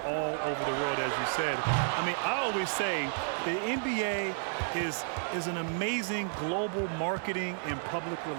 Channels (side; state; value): left; silent; digital silence